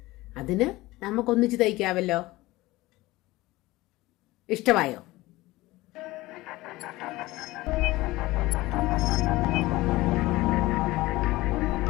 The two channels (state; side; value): quieter; right; 19.2 dB